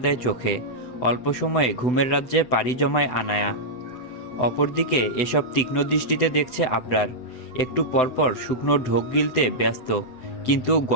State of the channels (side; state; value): right; late; 7.9 ms